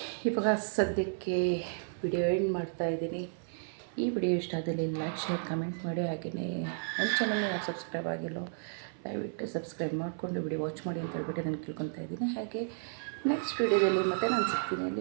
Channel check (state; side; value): silent; left; 56 dB below the other